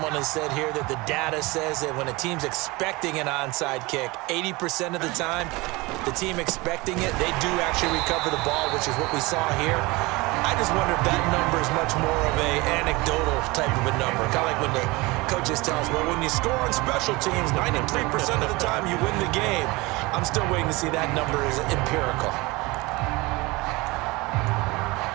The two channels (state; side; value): quieter; left; 23.2 dB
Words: has said here that the data says that when a team's expecting an onside kick, 80% of the time, the team expecting it, they do actually recover the ball, which is what we saw here. I just wonder if that number is much more of a anecdotal type of a number. Kind of like when the coaches tell us, well, when you score on special teams, 93% of the time you win the game. I'm still waiting to see that number is empirical.